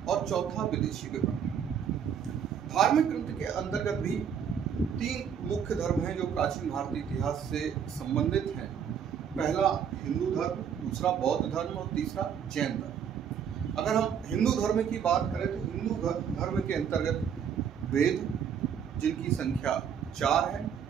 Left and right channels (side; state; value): left; quieter; 7.9 dB